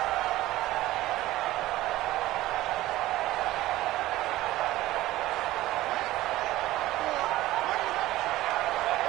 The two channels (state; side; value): quieter; left; 16.4 dB